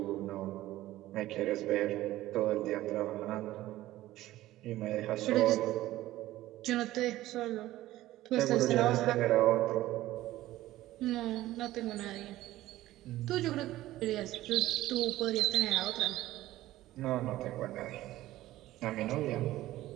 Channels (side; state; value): left; quieter; 15.7 dB